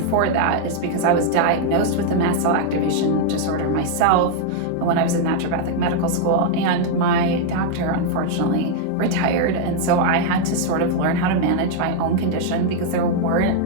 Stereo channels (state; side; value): different; both; correlation 0.00